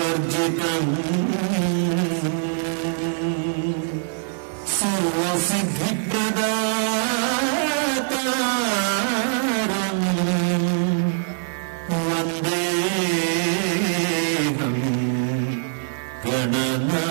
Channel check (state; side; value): silent; left; digital silence